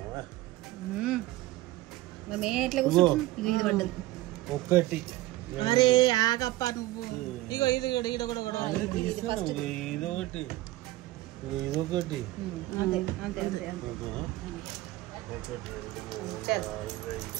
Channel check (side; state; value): left; quieter; 17.5 dB